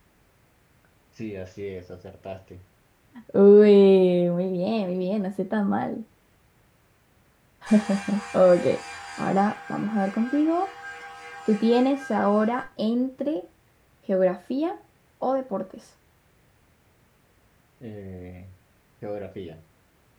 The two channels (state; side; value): identical; both; correlation 1.00